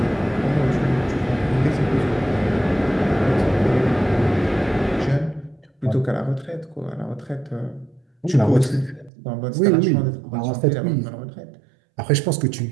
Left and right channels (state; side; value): drops out; left; at 9.1 s